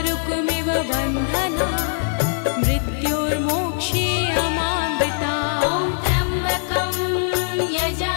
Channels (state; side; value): silent; right; digital silence